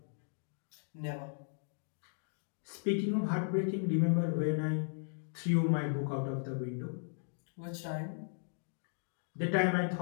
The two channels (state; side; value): silent; right; digital silence